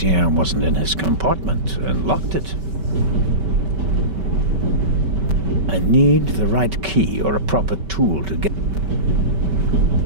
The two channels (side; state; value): left; late; 5.2 ms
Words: wasn't in his compartment and locked it. I need the right key or a proper tool to get...